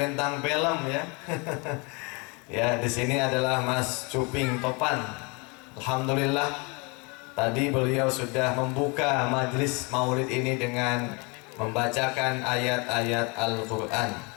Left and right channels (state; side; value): quieter; right; 30.2 dB